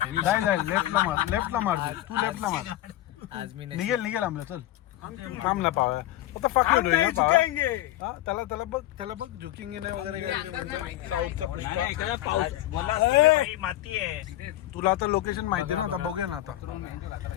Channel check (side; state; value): right; quieter; 14.7 dB